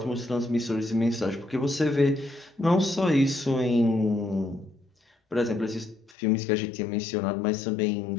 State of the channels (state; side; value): drops out; right; at 6.2 s